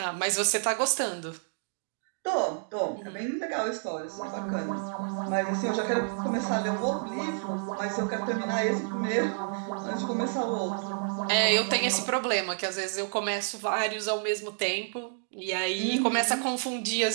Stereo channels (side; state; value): left; silent; digital silence